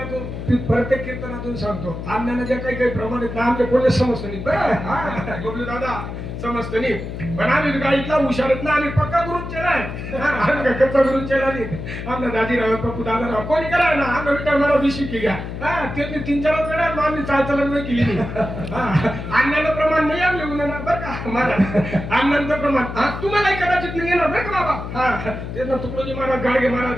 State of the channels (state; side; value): noise; left; hum, 7 dB below the sound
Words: समजून सांगतो अण्णांना ज्या काही काही प्रमाणात ना आमच्या कोणी समजतं नाही बरं हा, बबलू दादा समजतं नाही पण आम्ही गाडीतला हुशारत ना आम्ही पक्का करून केलाय आम्ही काय कच्चा करून केला नाही आमना दाजीराव पप्पू दादाराव कोणी करा ना आम्ही विटा मला बिशी की घ्या हा त्यांनी 3-4 वेळा आम्ही चालचलन नाही केली नाही अण्णांना प्रमाण नाही आमले गुन्हा बरं का मला अण्णांचं प्रमाण हा तुम्हालाही कदाचित नाही येणार बरं का बाबा हा त्यांना तुकडोजी महाराज गाडगे